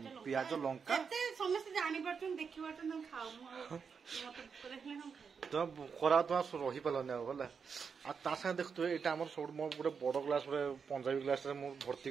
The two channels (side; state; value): left; quieter; 6.0 dB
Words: प्याज लंका समस्त जानि परछन देखि परछन हम खाऊ तो खरा तो रही पालने बोला आ ता संग देखतो एटा हमर सब मो पूरे बड़ ग्लास रे पंजाबी ग्लास रे मो भर्ती